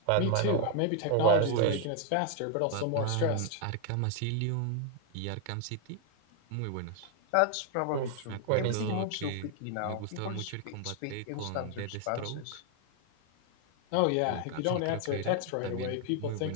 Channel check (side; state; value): both; different; correlation 0.00